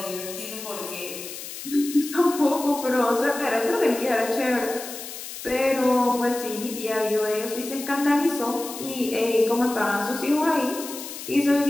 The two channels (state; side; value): noise; left; hiss, 10 dB below the sound